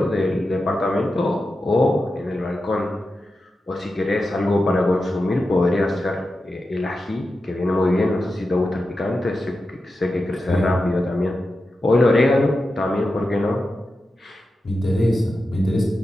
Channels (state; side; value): normal; both; correlation 0.91